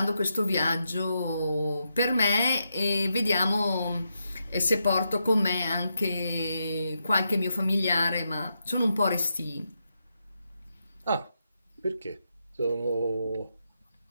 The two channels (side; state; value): both; inverted; correlation -0.84